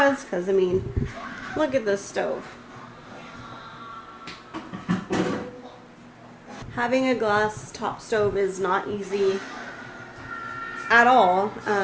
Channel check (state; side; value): identical; both; correlation 1.00